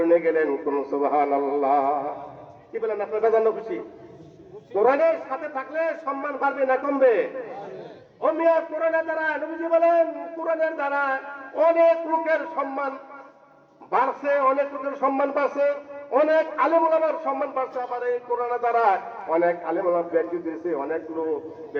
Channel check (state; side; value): identical; both; correlation 1.00